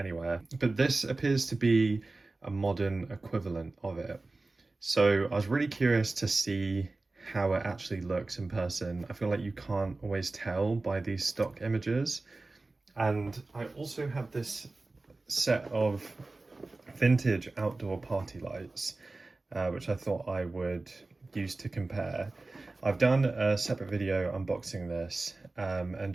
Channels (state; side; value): quieter; left; 3.3 dB